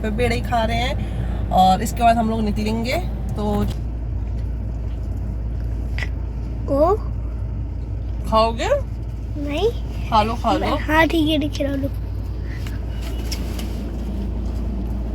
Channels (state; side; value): identical; both; correlation 1.00